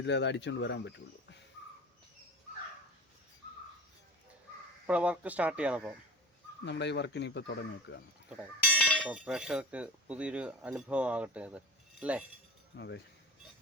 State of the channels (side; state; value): both; normal; correlation 0.33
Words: അത് അടിച്ചുകൊണ്ട് വരാൻ പറ്റുള്ളൂ. ഇപ്പോൾ വർക്ക് സ്റ്റാർട്ട് ചെയ്യണം. അപ്പോൾ നമ്മുടെ ഈ വർക്കിന് ഇപ്പോൾ തുടങ്ങി വെക്കുകയാണ്. അപ്പോൾ പ്രേക്ഷകർക്ക് പുതിയൊരു അനുഭവം ആകട്ടെ അത് അല്ലേ? അതെ.